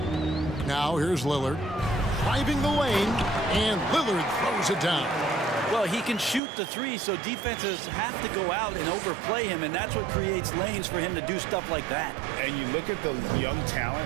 Now here's Lillard. Driving the lane, and Lillard throws it down. Well, he can shoot the 3, so defenses have to go out and overplay him, and that's what creates lanes for him to do stuff like that. And you look at the young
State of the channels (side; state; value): left; drops out; at 6.4 s